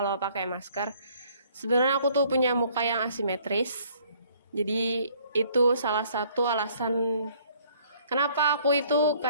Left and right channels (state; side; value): inverted; both; correlation -0.60